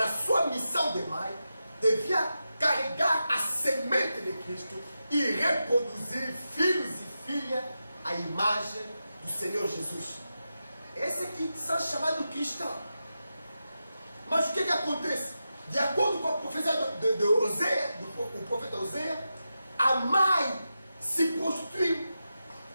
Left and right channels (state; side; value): inverted; both; correlation -0.90